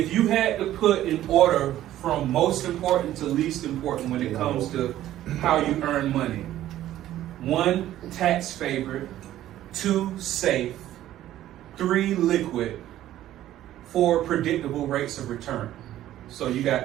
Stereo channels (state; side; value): quieter; left; 13.2 dB